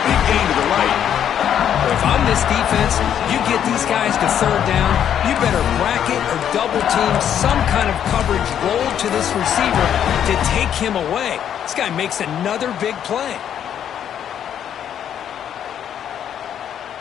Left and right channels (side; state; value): right; quieter; 9.5 dB